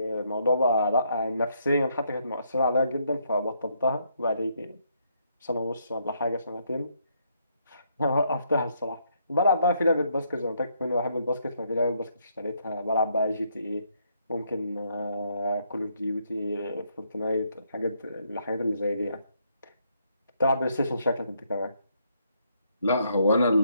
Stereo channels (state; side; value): inverted; both; correlation -0.73